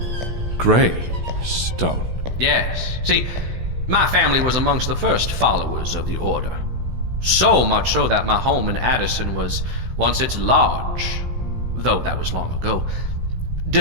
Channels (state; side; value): late; left; 16 ms